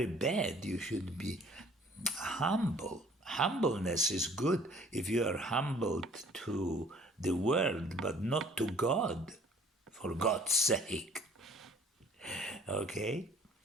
bad. You should be humble. Humbleness is good if you are humbled to the world, but not to God, for God's sake. Okay?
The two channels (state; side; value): normal; both; correlation 0.54